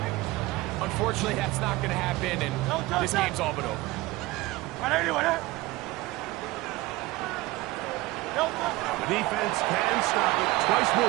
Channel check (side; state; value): left; quieter; 19.6 dB